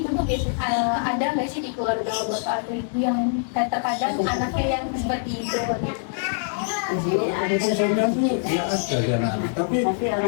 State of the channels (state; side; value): silent; right; digital silence